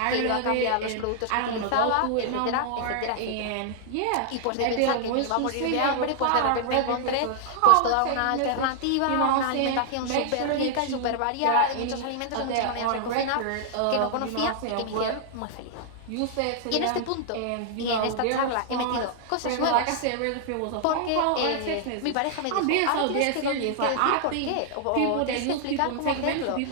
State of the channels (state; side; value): different; both; correlation -0.01